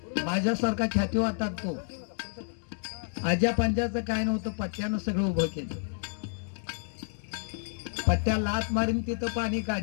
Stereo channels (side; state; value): right; silent; digital silence